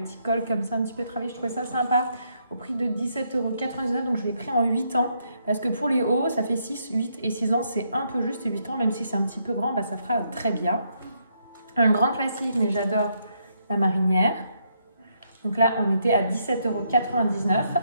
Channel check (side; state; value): both; inverted; correlation -0.75